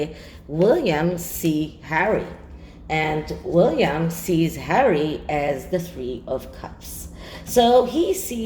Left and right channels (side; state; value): both; identical; correlation 1.00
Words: William see Harry? And William sees Harry as the Three of Cups. So he